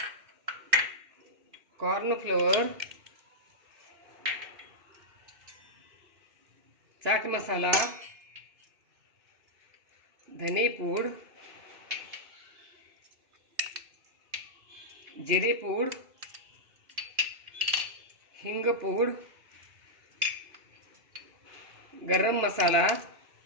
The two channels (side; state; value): left; late; 2.9 ms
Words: कॉर्नफ्लोअर, चाट मसाला, धने पूड, जिरे पूड, हिंग पूड, गरम मसाला,